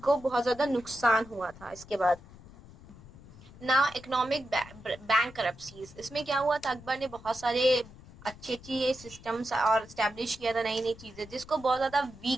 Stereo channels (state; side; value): noise; left; rumble, 20 dB below the sound